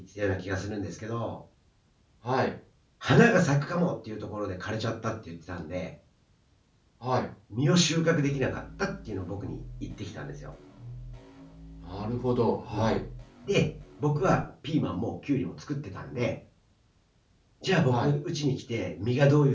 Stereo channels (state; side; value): identical; both; correlation 1.00